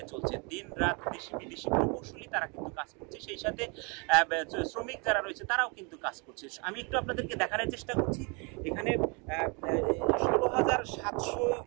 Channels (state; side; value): quieter; left; 32.1 dB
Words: চলছে। দিন রাত দেশি বিদেশি প্রকৌশলী তারা কিন্তু কাজ করছে, সেই সাথে শ্রমিক যারা রয়েছে তারাও কিন্তু কাজ করছে। আমি একটু আপনাদেরকে দেখানোর চেষ্টা করছি। এখানে